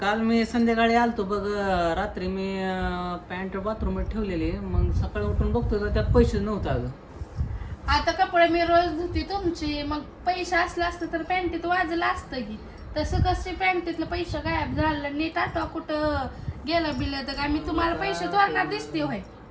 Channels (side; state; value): both; identical; correlation 1.00